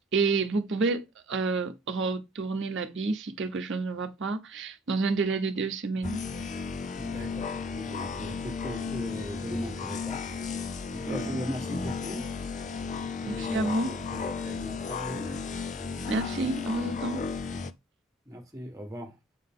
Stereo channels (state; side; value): normal; both; correlation 0.53